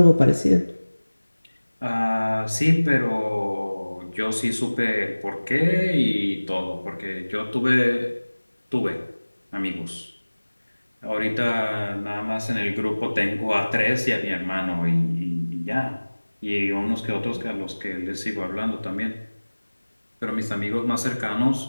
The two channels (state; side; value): inverted; both; correlation -1.00